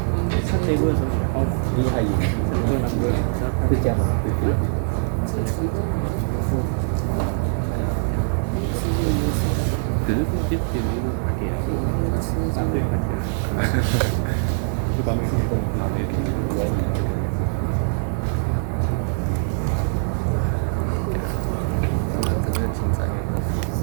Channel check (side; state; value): left; silent; digital silence